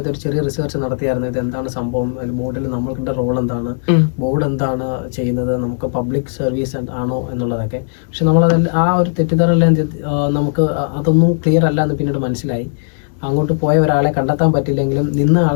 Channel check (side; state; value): right; silent; digital silence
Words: ഒരു ചെറിയ റിസർച്ച് നടത്തിയായിരുന്നു. ഇത് എന്താണ് സംഭവം, ബോർഡിൽ നമ്മളുടെ റോൾ എന്താണ്, ബോർഡ് എന്താണ് ചെയ്യുന്നത്, നമുക്ക് പബ്ലിക് സർവീസ് ആണോ എന്നുള്ളതൊക്കെ. പക്ഷെ ആ ഒരു തെറ്റിദ്ധാരണ നമുക്ക് അതൊന്നും ക്ലിയർ അല്ല എന്ന് പിന്നീട് മനസ്സിലായി. അങ്ങോട്ട് പോയ ഒരാളെ കണ്ടെത്താൻ പറ്റില്ലെങ്കിലും നിന്ന